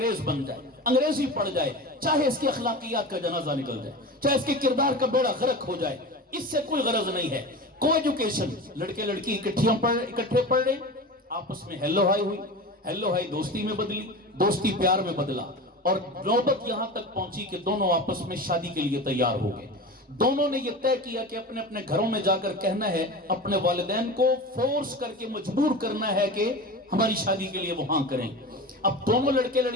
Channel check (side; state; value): both; normal; correlation 0.30